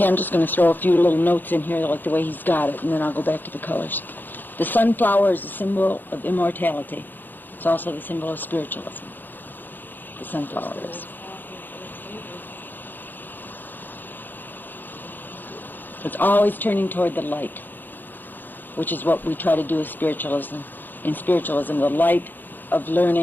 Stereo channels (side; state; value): right; late; 0.090 ms